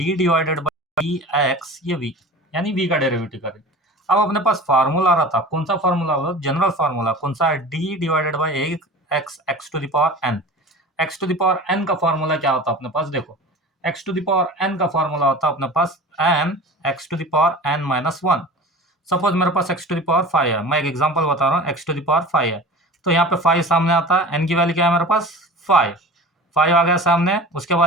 divided by d x, ये वी, यानी वी का डेरिवेटिव करें। अब अपने पास फार्मूला आ रहा था, कौन सा फार्मूला होगा, जनरल फार्मूला कौन सा है, d divided by x, x to the power n. X to the power n का फार्मूला क्या होता है अपने पास, देखो x to the power n का फार्मूला होता है अपने पास n x to the power n minus 1। Suppose मेरे पास एक्स टू द पावर 5 है, मैं एक एग्जांपल बता रहा हूँ, एक्स टू द पावर 5 है। तो यहाँ पे 5 सामने आता है, एन की वैल्यू क्या है मेरे पास 5, 5 आ गया सामने। उसके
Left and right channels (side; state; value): both; normal; correlation 0.37